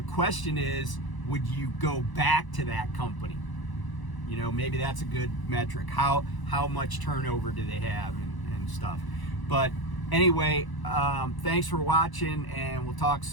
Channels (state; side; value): late; right; 1.0 ms